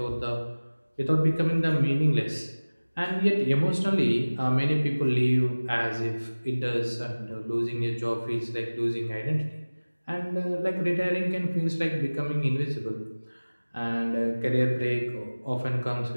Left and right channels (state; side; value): inverted; both; correlation -1.00